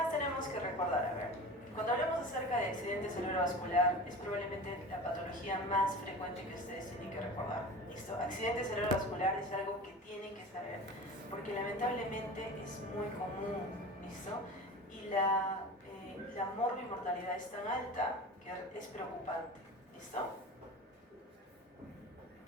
tenemos que recordar? A ver. Cuando hablamos acerca de accidente cerebrovascular, es probablemente la patología más frecuente que ustedes tienen que recordar. ¿Listo? Accidente cerebrovascular es algo que tienen que saber, porque lamentablemente es muy común, ¿listo? Y la morbimortalidad es tan alta que es preocupante, ¿listo?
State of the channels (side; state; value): both; normal; correlation 0.34